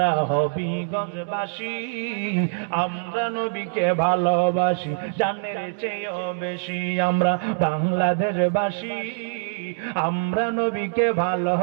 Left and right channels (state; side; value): silent; left; digital silence